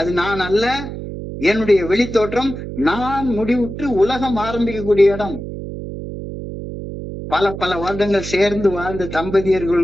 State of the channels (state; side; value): noise; right; hum, 8 dB below the sound